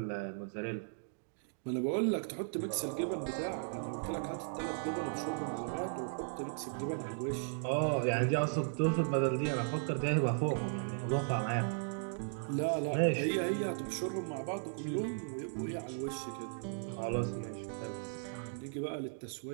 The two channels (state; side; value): silent; left; digital silence